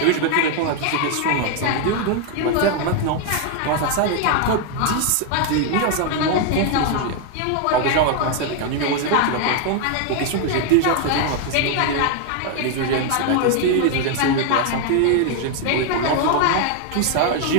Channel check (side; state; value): both; different; correlation 0.01